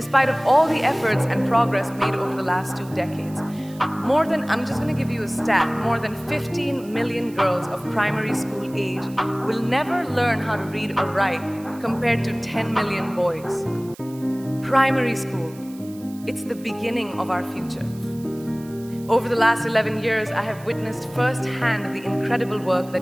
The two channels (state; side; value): noise; right; hiss, 22 dB below the sound